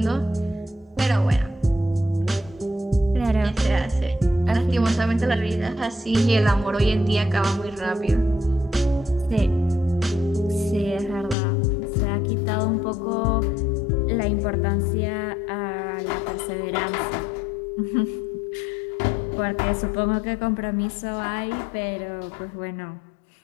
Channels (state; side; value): drops out; right; at 11.4 s